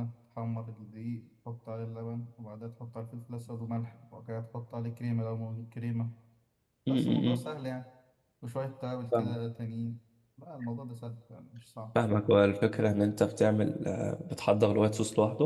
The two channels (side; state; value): both; identical; correlation 1.00